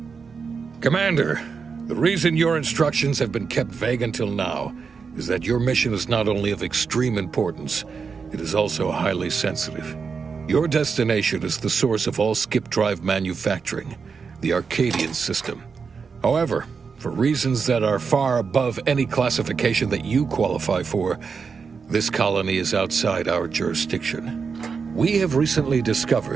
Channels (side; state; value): left; quieter; 5.5 dB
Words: Commander, the reason your instructions have been kept vague until now is that your mission is not only of extreme importance, it is also highly sensitive. Your destination is the source of all skip drive manufacturing, the Arcadian system. However, for reasons that are far above any classification that you qualify for, this colony is outside our jurisdiction. We have recently